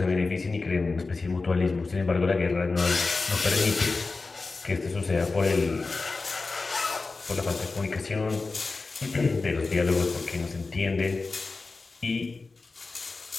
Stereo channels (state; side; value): quieter; right; 3.8 dB